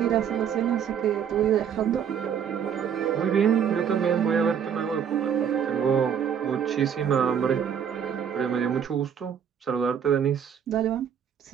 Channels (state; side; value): quieter; left; 8.1 dB